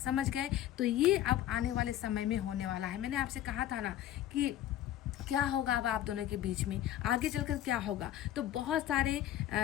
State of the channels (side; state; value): right; quieter; 12.3 dB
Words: समझ गए? तो ये अब आने वाले समय में होने वाला है। मैंने आपसे कहा था ना कि क्या होगा अब आप दोनों के बीच में, आगे चलकर क्या होगा। तो बहुत सारे